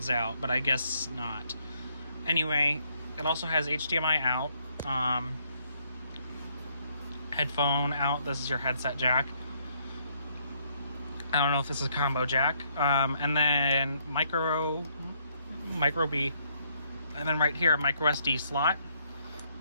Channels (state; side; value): inverted; both; correlation -0.71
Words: out, but I guess not. Anyway, it also has HDMI out. Headphone out. This is your headset jack. I don't know if this is a combo jack. And then micro B. And then right here, a micro SD slot.